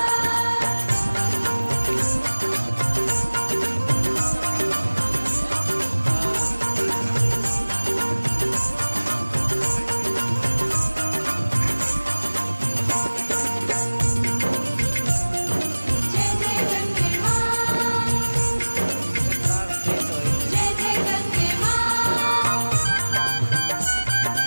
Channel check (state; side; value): inverted; both; correlation -1.00